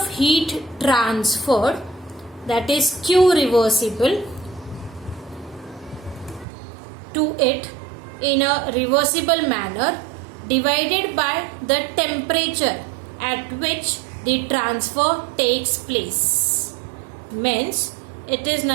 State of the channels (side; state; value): left; drops out; at 6.5 s